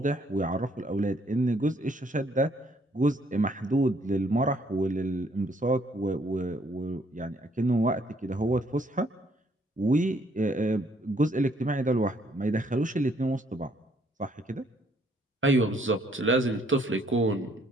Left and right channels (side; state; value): both; normal; correlation 0.67